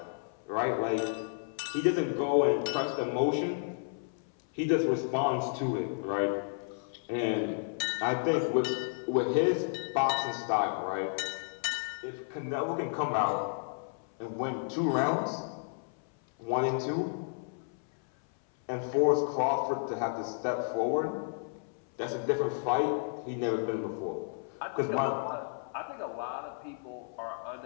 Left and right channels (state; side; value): silent; right; 56 dB below the other